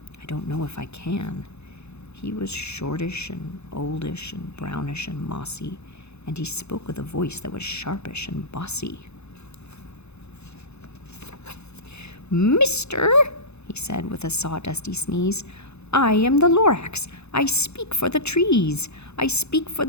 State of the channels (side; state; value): right; late; 0.80 ms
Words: I don't know if I can. He was shortish and oldish and brownish and mossy, and he spoke with a voice that was sharpish and bossy. "Mister," he said with a sawdusty sneeze, "I am the Lorax. I speak for the trees. I speak for